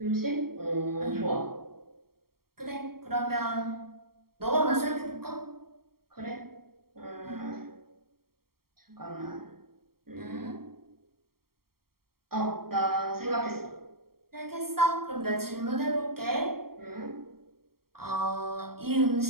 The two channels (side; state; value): left; late; 0.94 ms